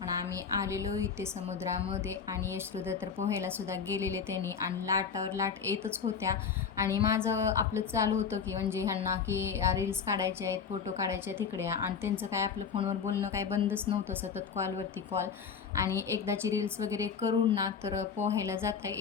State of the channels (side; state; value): right; quieter; 6.5 dB